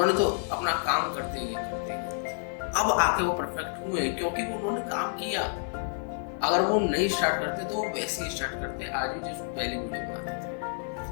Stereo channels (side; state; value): right; silent; digital silence